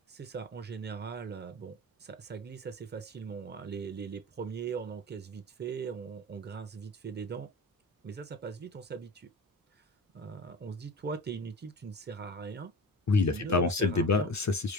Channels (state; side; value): normal; both; correlation 0.34